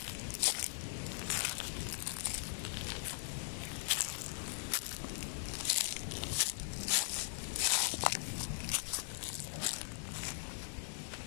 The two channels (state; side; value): silent; right; digital silence